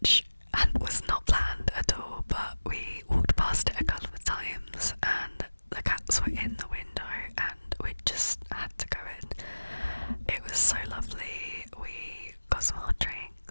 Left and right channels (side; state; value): both; inverted; correlation -1.00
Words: was not planned at all, but we walked past it a couple of times and the cats were in the window and we just had to go in. It was so lovely. We got some hot